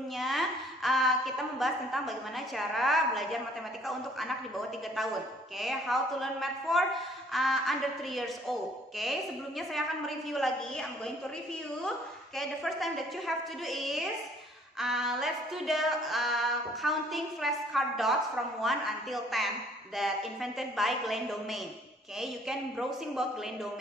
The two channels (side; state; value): both; normal; correlation 0.59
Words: kita membahas tentang bagaimana cara belajar matematika untuk anak di bawah 3 tahun. Okay, how to learn math for under 3 years old. Okay, sebelumnya saya akan mereview lagi. I'm going to review. Okay, the first time that you have to do is let's do the counting flashcard dots from 1 until 10 that invented by Glenn Domain. Okay, you can browsing about Glenn